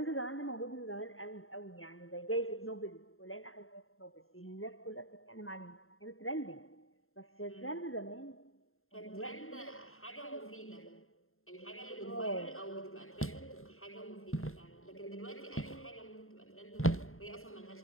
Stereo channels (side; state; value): right; late; 0.61 ms